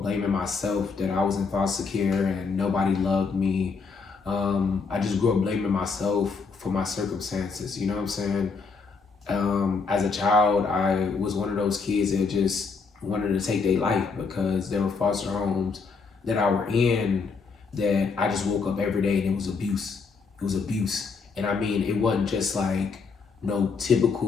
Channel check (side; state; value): right; quieter; 4.9 dB